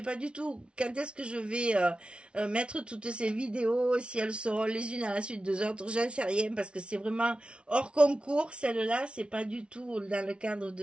pas du tout quand est-ce que je vais mettre toutes ces vidéos, si elles seront les unes à la suite des autres, j'en sais rien parce que c'est vraiment hors concours. Celle-là, c'est pas du tout dans le cadre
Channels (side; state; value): left; late; 0.058 ms